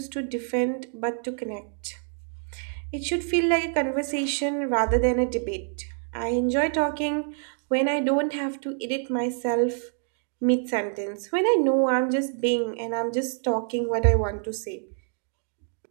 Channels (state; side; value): silent; left; 58 dB below the other